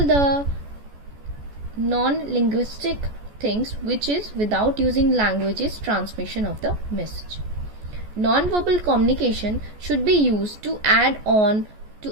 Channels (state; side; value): late; left; 14 ms